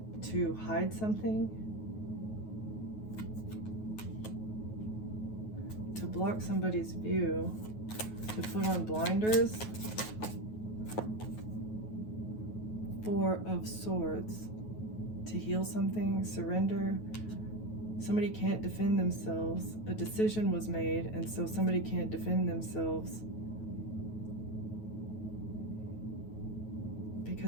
to hide something, to block somebody's view, to put on blinders. Four of Swords. To heal something, surrender. Somebody can't defend themselves. A decision was made, and so somebody can't defend themselves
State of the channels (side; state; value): right; late; 9.3 ms